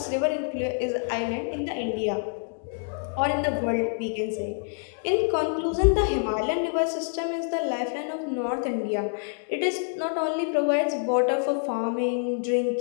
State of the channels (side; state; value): right; silent; 60 dB below the other